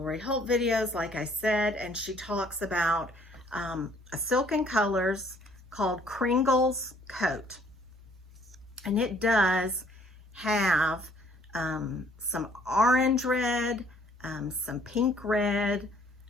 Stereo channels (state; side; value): normal; both; correlation 0.61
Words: Holt videos, like I said, and she talks about a silk in colors called Kringle's Coat. And it does have some orange red, some pink red.